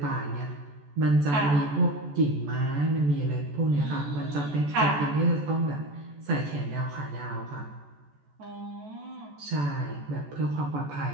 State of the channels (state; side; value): late; left; 14 ms